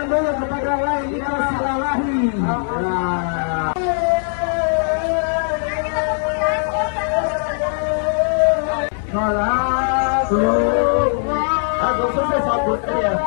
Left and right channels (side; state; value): right; silent; 66 dB below the other